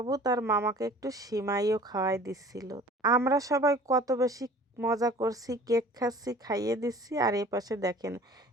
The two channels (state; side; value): normal; both; correlation 0.46